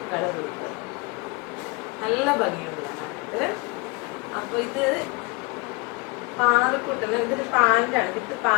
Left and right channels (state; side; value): quieter; right; 25.6 dB